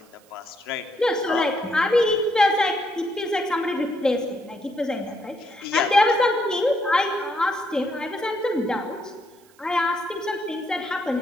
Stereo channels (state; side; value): noise; right; hiss, 30 dB below the sound